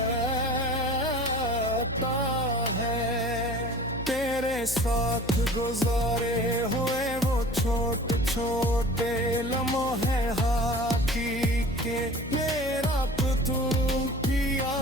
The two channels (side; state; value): left; noise; hum, 10 dB below the sound